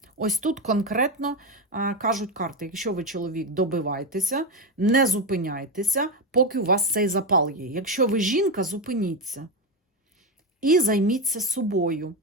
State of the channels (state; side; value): normal; both; correlation 0.12